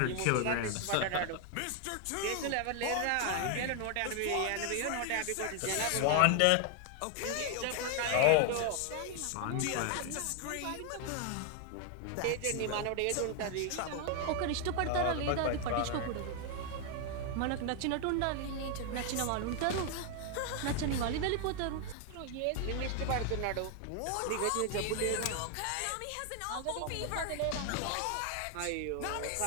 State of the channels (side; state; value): both; different; correlation 0.00